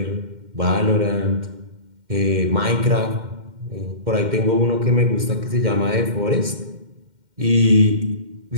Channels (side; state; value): left; late; 2.1 ms